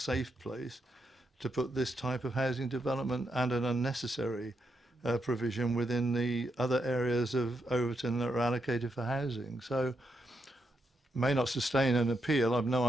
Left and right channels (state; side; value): normal; both; correlation 0.82